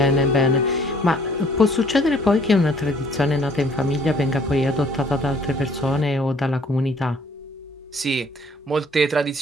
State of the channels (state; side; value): normal; both; correlation 0.59